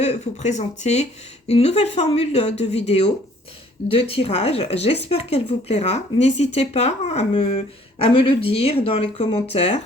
vous présenter une nouvelle formule de vidéo de tirage. J'espère qu'elle vous plaira. N'hésitez pas à me le dire dans les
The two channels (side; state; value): both; normal; correlation 0.58